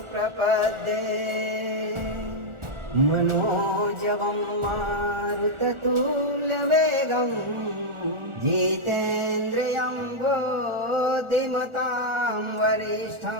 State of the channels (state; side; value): late; left; 1.4 ms